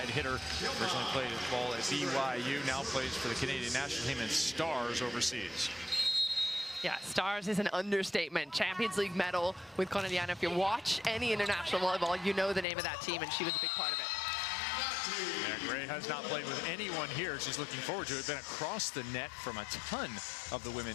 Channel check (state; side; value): drops out; right; at 12.7 s